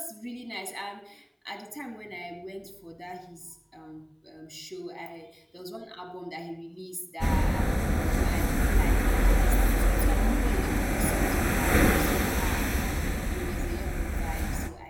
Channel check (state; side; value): identical; both; correlation 1.00